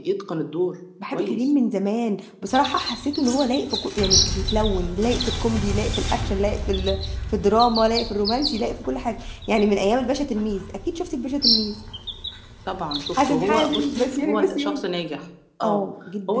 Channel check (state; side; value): identical; both; correlation 1.00